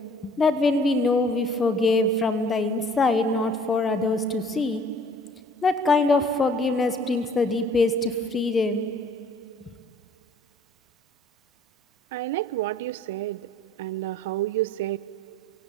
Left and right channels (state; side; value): normal; both; correlation 0.55